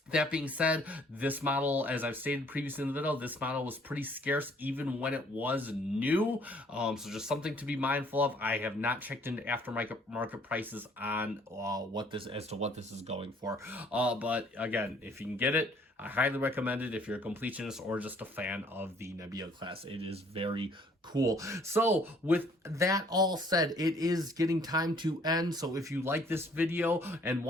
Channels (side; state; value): both; normal; correlation 0.60